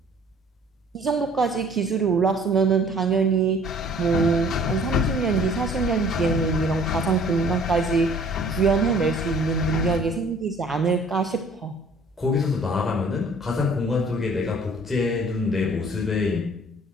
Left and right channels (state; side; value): normal; both; correlation 0.54